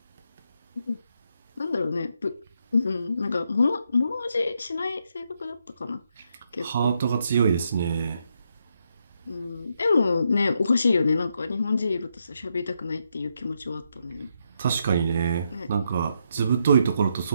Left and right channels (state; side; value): inverted; both; correlation -0.79